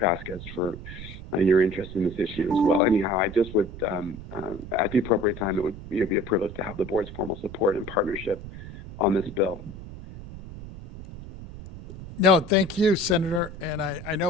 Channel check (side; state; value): right; noise; rumble, 13 dB below the sound